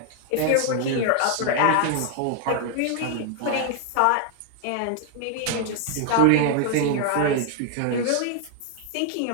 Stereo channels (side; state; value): both; different; correlation 0.00